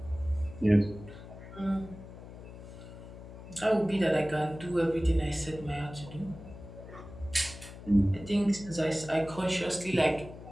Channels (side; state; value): left; noise; hum, 15 dB below the sound